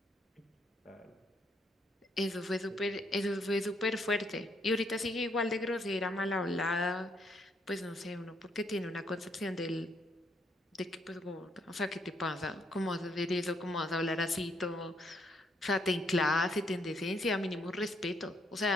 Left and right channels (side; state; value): both; normal; correlation 0.72